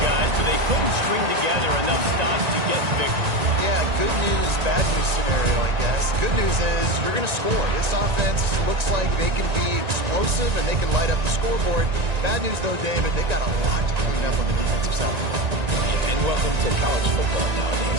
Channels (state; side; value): late; left; 1.9 ms